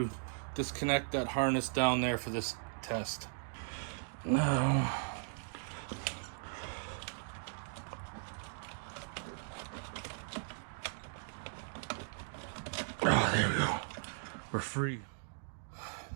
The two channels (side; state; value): left; silent; digital silence